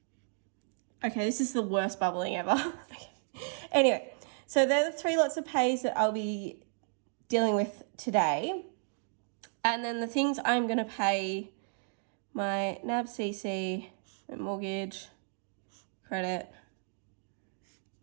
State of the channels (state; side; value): silent; left; digital silence